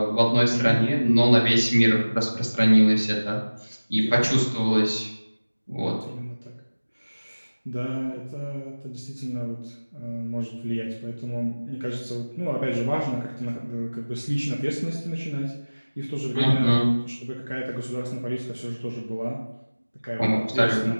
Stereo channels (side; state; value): both; inverted; correlation -1.00